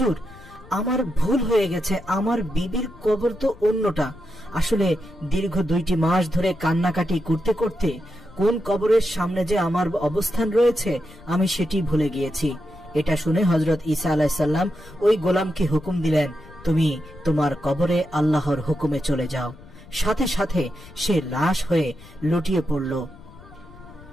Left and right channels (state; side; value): noise; left; rumble, 20 dB below the sound